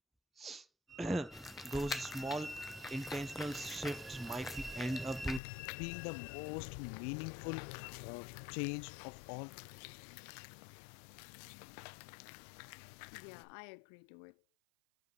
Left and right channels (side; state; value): right; drops out; at 5.4 s